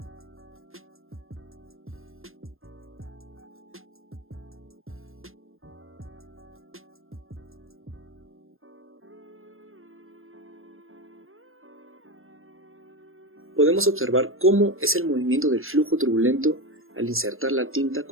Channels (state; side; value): late; left; 0.60 ms